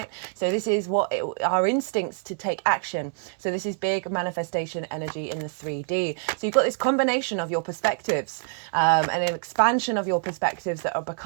So this is our instincts to take action. So this is big manifestation energy in the 3D. So you've got this combination of your perspectives, and an expansion of your perspectives that are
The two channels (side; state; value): left; silent; 61 dB below the other